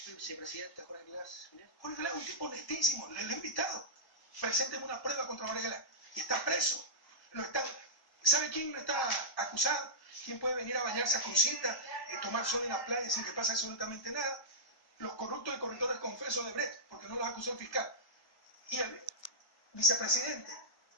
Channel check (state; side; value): late; right; 1.1 ms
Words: vicepresidente Jorge Glass. Jorge Glass es un tipo honestísimo, le he invitado. Presénteme una prueba contra Jorge Glass. Y está preso. ¿Sabe quién no está acusado? ¿Quién puede venir a bañarse a Crucita, tomar sol en la playa sin que pase absolutamente nada? Los corruptos y corruptores confesos de Brecht, porque no los acusó el fiscal. Y el vicepresidente,